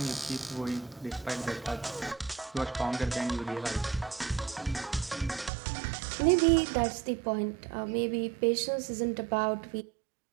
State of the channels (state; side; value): drops out; left; at 5.5 s